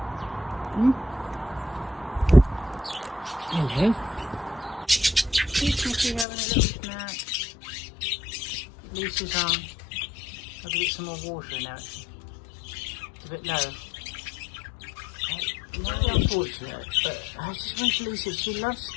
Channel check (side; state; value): right; drops out; at 6.2 s